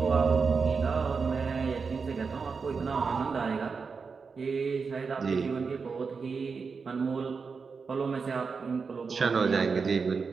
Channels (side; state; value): left; quieter; 5.1 dB